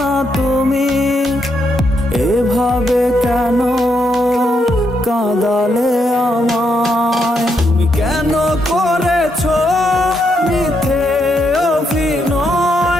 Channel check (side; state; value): both; normal; correlation 0.79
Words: তুমি এভাবে কেন কাঁদালে আমায়? তুমি কেন করেছো মিথ্যে